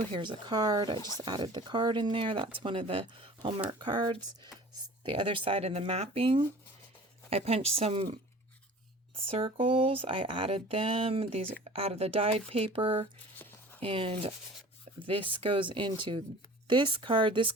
Here's a card. I just added the card in there. That's one of the Hallmark cards. The other side of the mapping. I punched some circles. I added them. These out of the dyed paper. And this goes into this card. This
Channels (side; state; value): both; normal; correlation 0.44